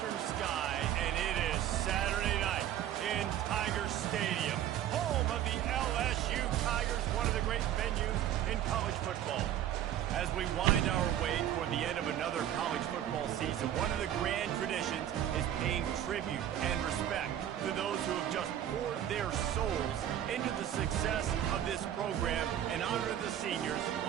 sky, and it is Saturday night in Tiger Stadium, home of the LSU Tigers, one of the great venues in college football. As we wind our way toward the end of another college football season, one of the grand traditions is paying tribute and respect to those who have just poured their souls into the success of this program and honor the seniors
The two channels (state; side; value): quieter; left; 11.2 dB